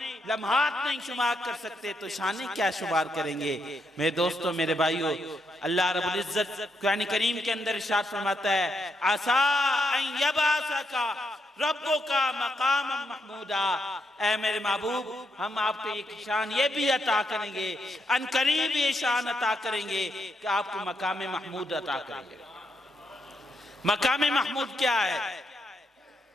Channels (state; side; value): normal; both; correlation 0.80